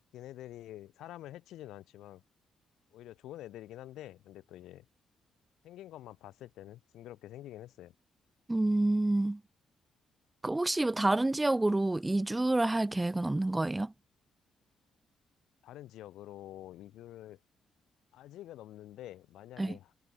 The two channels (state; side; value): normal; both; correlation 0.98